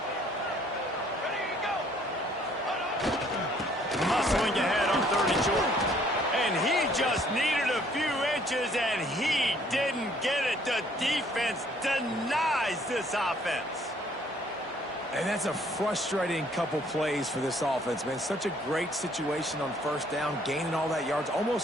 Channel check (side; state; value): both; normal; correlation 0.62